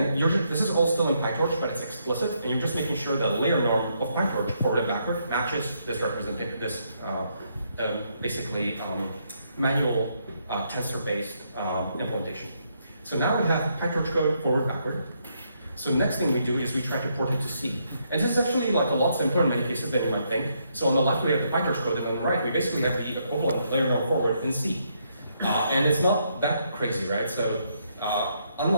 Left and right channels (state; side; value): inverted; both; correlation -0.76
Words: this is all still in PyTorch, but it's explicit, and you're just making sure that layer norm of PyTorch forward and backward matches this representation, this basically manual tensor-based implementation. So now we have PyTorch code forward backward. So the next thing we do is we try to port it to C. And this is actually like a lot simpler in many cases than you might think. So on the left we have the PyTorch code, and on the right we basically have the equivalent layer norm forward in C. And it's not that crazy, right? So